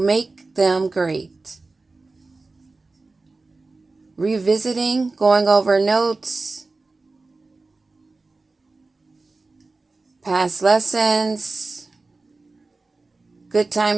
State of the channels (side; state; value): left; quieter; 3.6 dB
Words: them great. Revisiting, going over notes, past lessons, good